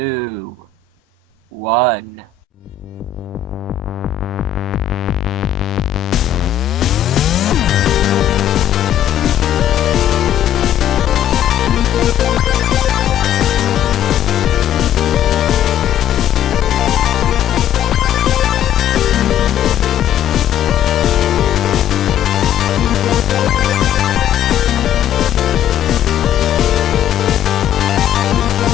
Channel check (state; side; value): quieter; right; 10.1 dB